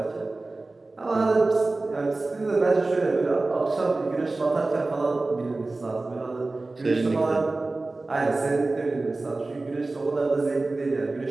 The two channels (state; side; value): quieter; left; 3.2 dB